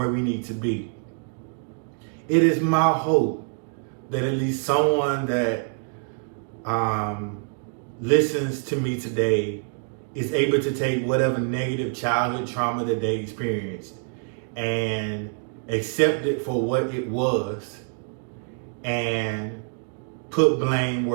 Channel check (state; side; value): silent; left; 57 dB below the other